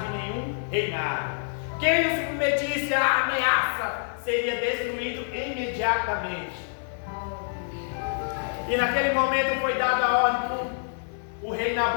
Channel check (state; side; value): silent; right; digital silence